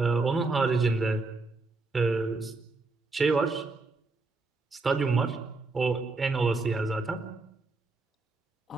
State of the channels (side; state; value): left; quieter; 3.6 dB